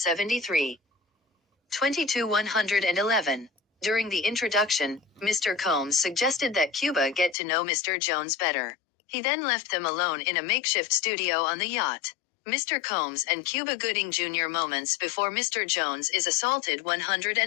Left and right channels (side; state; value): right; drops out; at 7.4 s